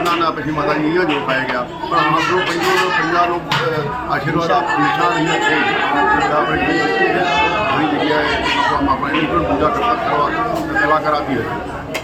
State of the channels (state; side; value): identical; both; correlation 1.00